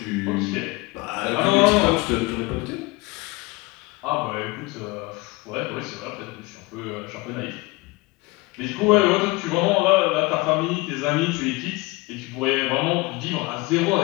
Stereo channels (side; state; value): right; quieter; 23.4 dB